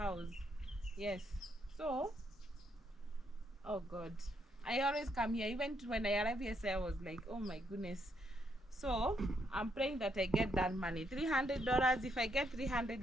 Yes. So, oh God, I always come here. Even when I arrived here, I was like, oh my goodness. So I'm praying that I get that money, $300. If I get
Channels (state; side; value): normal; both; correlation 0.76